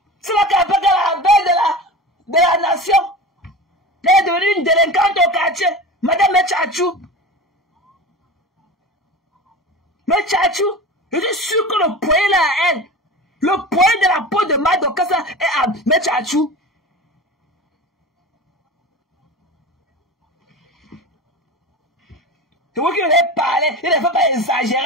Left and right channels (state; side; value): normal; both; correlation 0.31